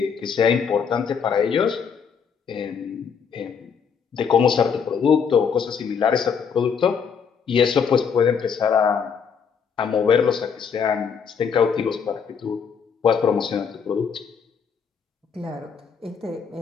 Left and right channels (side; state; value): right; quieter; 6.5 dB